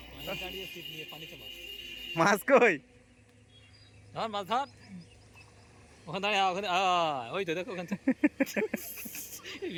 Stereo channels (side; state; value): both; identical; correlation 1.00